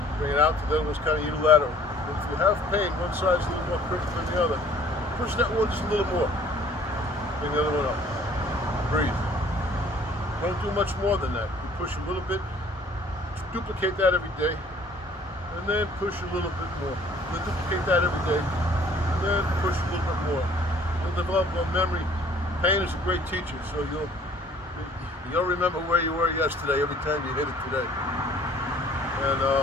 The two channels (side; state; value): both; normal; correlation 0.54